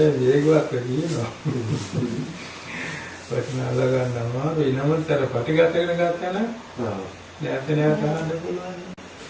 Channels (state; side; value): identical; both; correlation 1.00